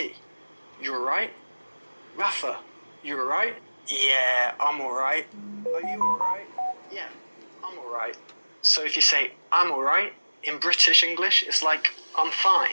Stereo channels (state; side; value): inverted; both; correlation -1.00